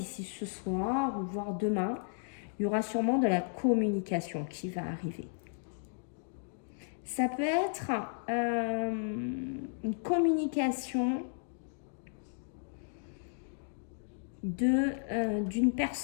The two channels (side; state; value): right; silent; digital silence